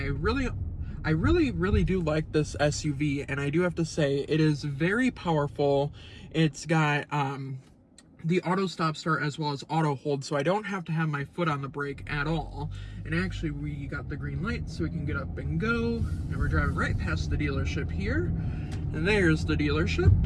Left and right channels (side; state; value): both; identical; correlation 1.00